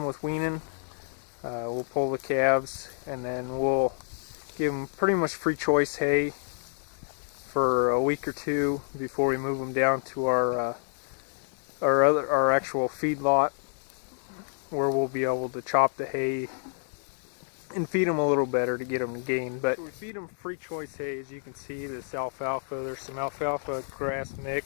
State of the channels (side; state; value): right; silent; 59 dB below the other